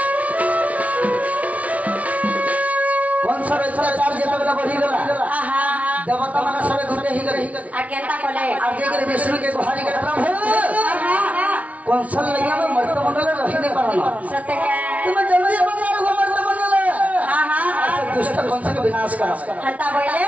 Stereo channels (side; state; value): left; late; 0.068 ms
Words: देवता माने सबे घुटे ही गई आ केनता कोले आ जे के विष्णु के गुहारी के प्रभु कौशल लगे में मर्त मंडल रहिने परना सत्य के तुम जल्दी बंगार हो मर्त मंडल हां हां दुष्ट कौन से विनाश कर हता बोले